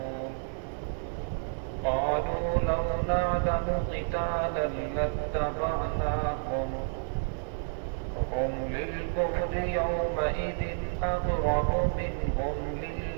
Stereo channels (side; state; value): left; silent; digital silence